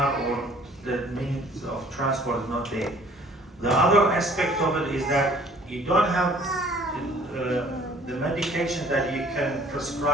or the means of transport is not there. The other aspect of it is that you don't have the medication that you can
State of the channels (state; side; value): normal; both; correlation 0.55